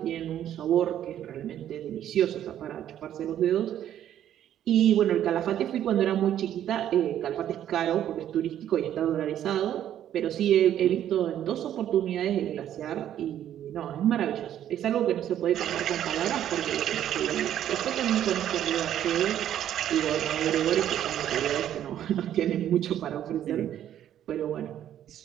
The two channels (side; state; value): left; quieter; 11.0 dB